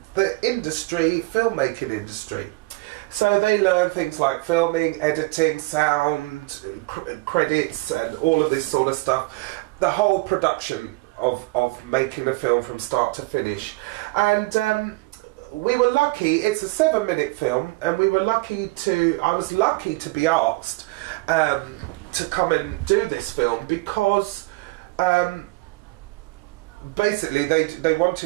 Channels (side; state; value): left; quieter; 23.0 dB